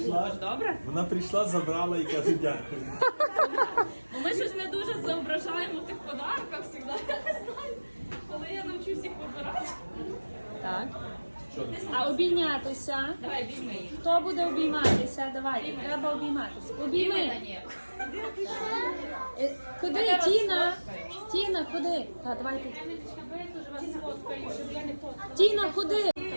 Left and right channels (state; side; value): inverted; both; correlation -1.00